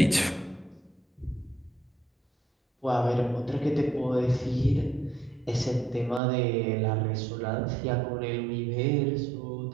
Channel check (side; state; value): left; drops out; at 6.2 s